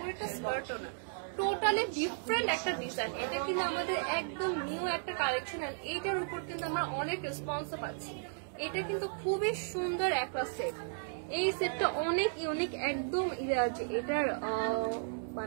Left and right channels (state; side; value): silent; left; digital silence